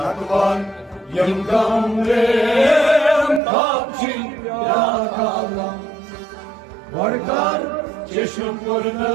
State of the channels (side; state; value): left; drops out; at 3.4 s